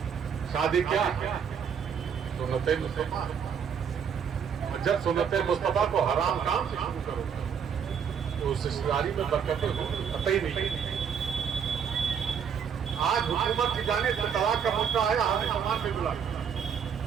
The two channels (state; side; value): quieter; left; 7.3 dB